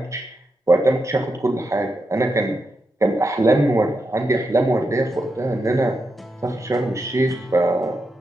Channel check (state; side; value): normal; both; correlation 0.86